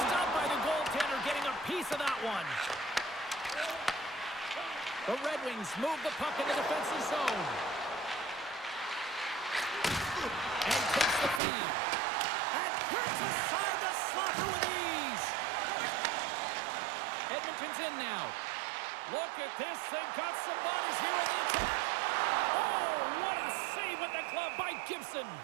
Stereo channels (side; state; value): left; drops out; at 11.4 s